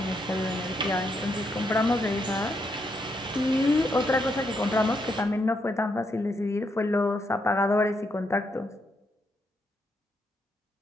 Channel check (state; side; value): normal; both; correlation 0.78